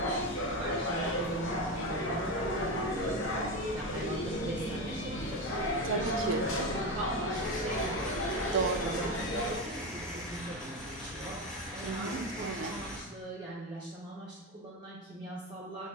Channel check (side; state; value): both; normal; correlation 0.17